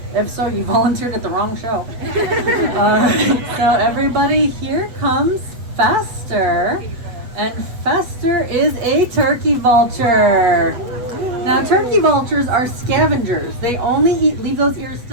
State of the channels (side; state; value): left; late; 8.1 ms